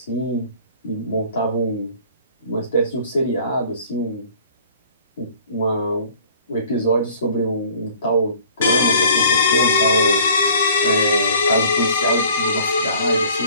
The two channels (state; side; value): inverted; both; correlation -0.52